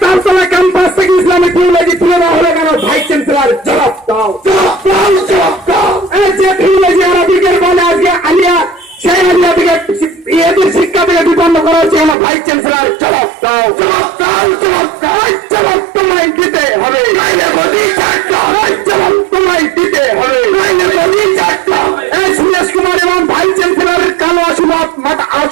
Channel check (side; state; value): left; drops out; at 12.2 s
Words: তারতলা ক্যাম্পাস থেকে ইসলামিক থিওলজি তুলে দেওয়া হলো কেন? ভাইস চ্যান্সেলর জবাব দাও, জবাব দাও। যে থিওলজি আরবিকের বলে আজকে আলিয়া, সেই আলিয়া থেকে এদের শিক্ষা থেকে বিপন্ন করা হচ্ছে কেন? ভাইস চ্যান্সেলর জবাব দাও, জবাব দাও। জবাব তোমায় দিতে হবে, জবাব তোমায় দিতে হবে। সুরেশ কুমার এবং ভাইস চ্যান্সেলরের কালো